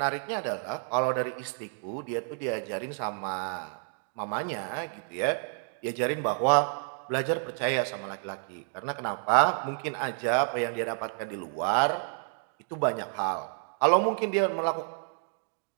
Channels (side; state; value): left; silent; 58 dB below the other